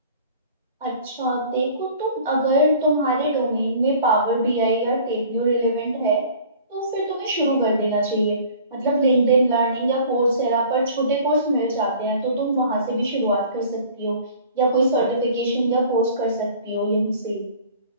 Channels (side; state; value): both; inverted; correlation -0.48